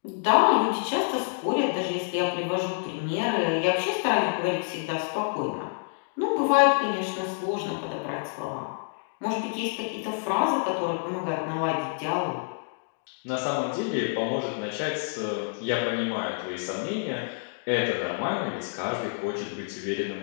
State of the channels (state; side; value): silent; right; digital silence